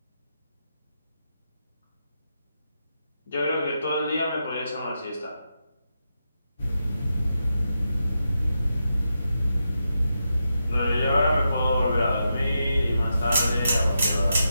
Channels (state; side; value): inverted; both; correlation -0.86